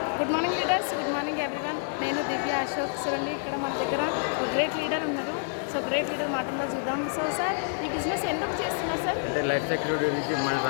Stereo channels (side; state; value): right; silent; 59 dB below the other